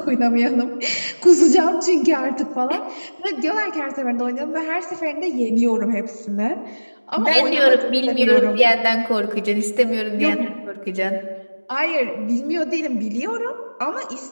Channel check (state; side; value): inverted; both; correlation -1.00